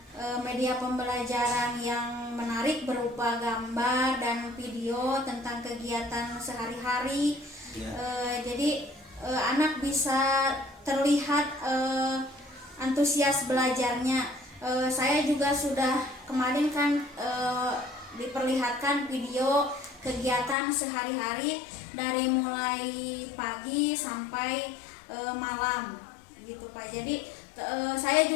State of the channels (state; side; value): drops out; right; at 20.6 s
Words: media pembelajaran yang menarik berupa gambar dan video tentang kegiatan sehari-hari. Ya. Jadi anak bisa terlihat antusias belajarnya. Saya juga sudah kemarin kan diperlihatkan video kegiatan sehari-hari dari mulai pagi sampai malam gitu Pak. Jadi saya